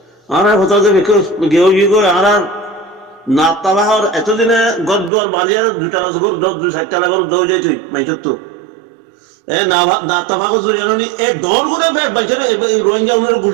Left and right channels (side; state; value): left; drops out; at 5.1 s